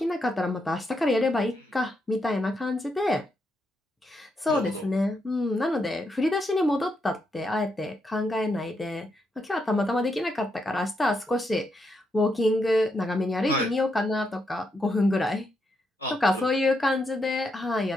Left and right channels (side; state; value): both; normal; correlation 0.81